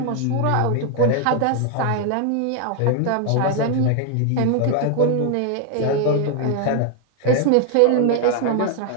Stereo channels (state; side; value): different; both; correlation 0.00